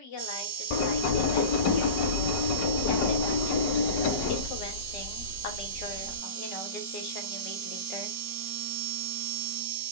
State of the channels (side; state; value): right; late; 5.3 ms